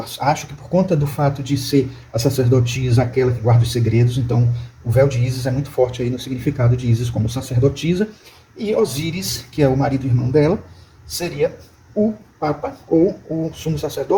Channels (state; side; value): identical; both; correlation 1.00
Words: acho que por conta do fato de ser a sacerdotisa aquela que guarda os segredos, então o véu de Ísis é muito forte aí no significado de Ísis como sacerdotisa, e Osíris, que é o marido e irmão dela, seria o Papa, ou o sumo